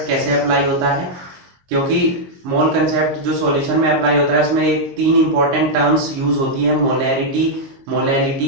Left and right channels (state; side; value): late; left; 22 ms